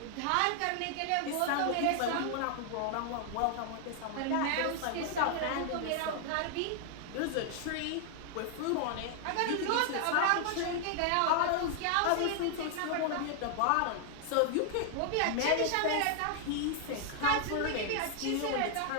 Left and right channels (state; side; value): different; both; correlation 0.00